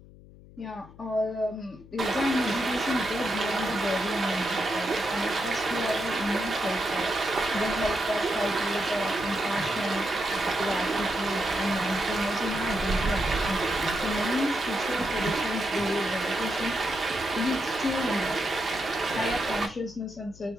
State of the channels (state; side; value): noise; left; hum, 21 dB below the sound